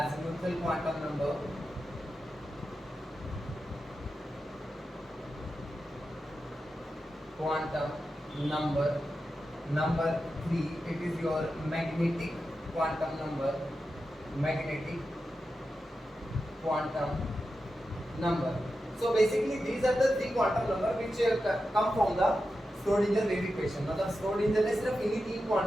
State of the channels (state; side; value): normal; both; correlation 0.90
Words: quantum number. Quantum number. Number 3, it is your magnetic quantum number. Magnetic quantum number. So basically these are the 3 quantum number which come from the Schrodinger wave equation. मतलब Schrodinger ने सिर्फ इन्हीं 3